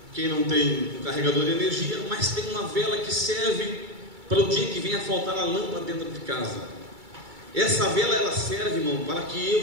quem não tem um carregador de energia, mas tem uma vela que serve para o dia que venha faltar a lâmpada dentro de casa. Essa vela ela serve, irmão, para que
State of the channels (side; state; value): left; late; 2.3 ms